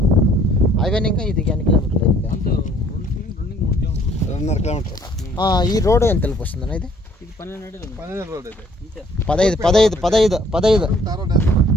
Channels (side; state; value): both; normal; correlation 0.60